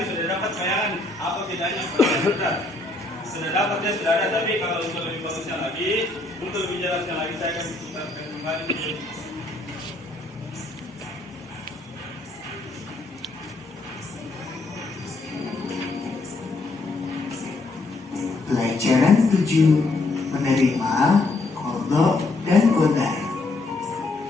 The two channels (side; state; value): right; quieter; 3.1 dB